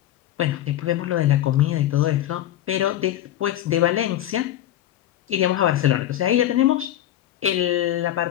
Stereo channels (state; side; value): quieter; right; 12.6 dB